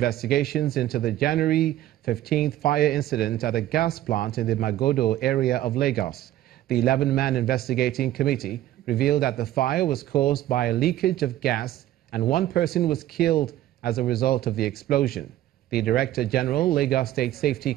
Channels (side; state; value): left; quieter; 13.8 dB